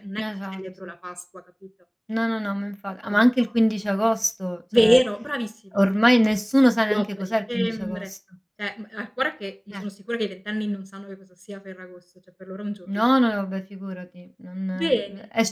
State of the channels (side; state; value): both; identical; correlation 1.00